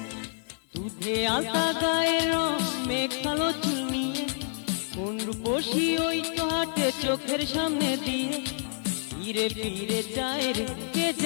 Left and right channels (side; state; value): right; silent; 59 dB below the other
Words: দুধে আলতা গায়ের রঙে কালো চুল নিয়ে, কোন রূপসী ওই তো হাটে চোখের সামনে দিয়ে, ফিরে ফিরে যায় রে কে